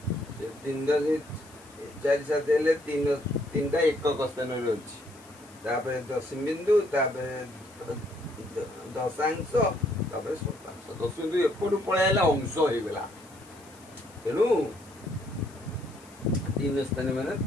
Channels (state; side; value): noise; left; hiss, 25 dB below the sound